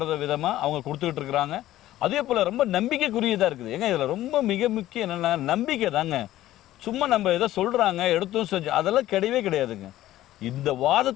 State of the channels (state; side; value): quieter; right; 14.5 dB